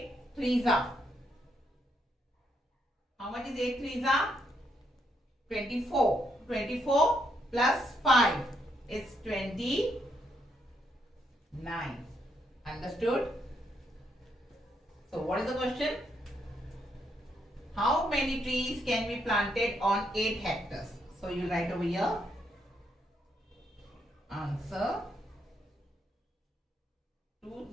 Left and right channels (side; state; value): both; normal; correlation 0.76